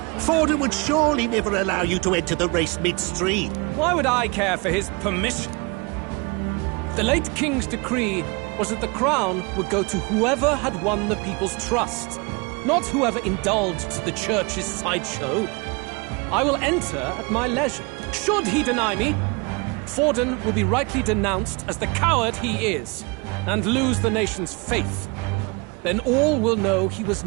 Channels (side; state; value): left; quieter; 28.6 dB